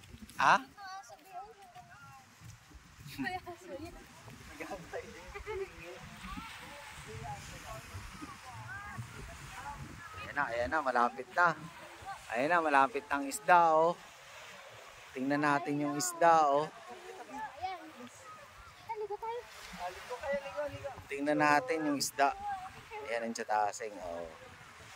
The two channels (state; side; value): identical; both; correlation 1.00